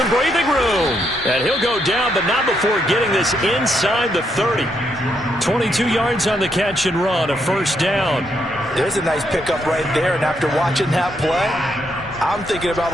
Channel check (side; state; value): both; normal; correlation 0.77